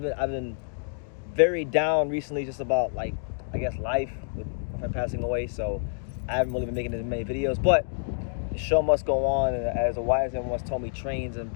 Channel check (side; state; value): right; silent; digital silence